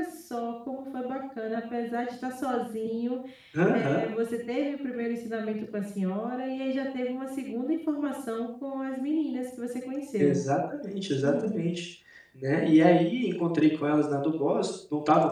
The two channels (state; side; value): identical; both; correlation 1.00